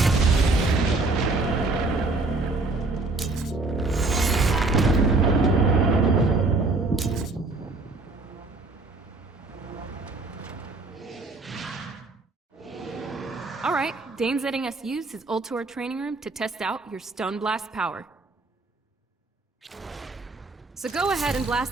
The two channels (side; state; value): left; quieter; 3.4 dB